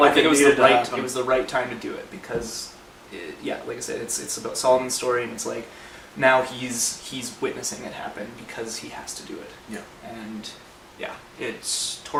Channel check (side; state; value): both; identical; correlation 1.00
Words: it was the right time to do it because, like I said, it's about Solomon's story, and it's like now he's witnessing it happen because he has to do it. Yeah. And yeah, it's